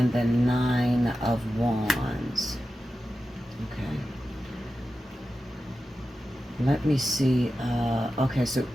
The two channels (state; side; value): normal; both; correlation 0.92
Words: the Nine of Wands. Okay. Let me see. Okay, so